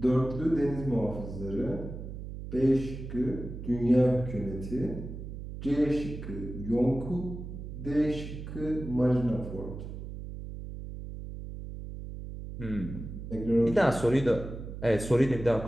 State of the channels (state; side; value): noise; right; hum, 9 dB below the sound